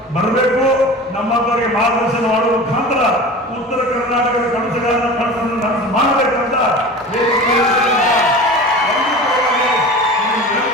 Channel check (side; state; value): both; normal; correlation 0.35